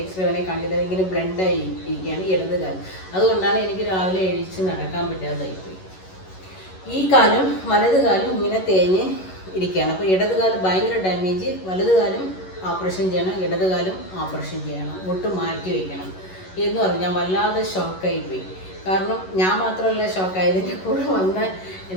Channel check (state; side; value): late; right; 11 ms